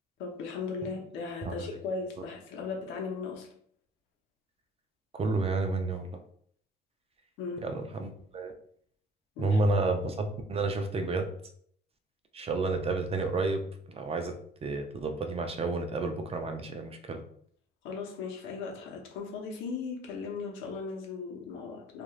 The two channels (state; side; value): normal; both; correlation 0.54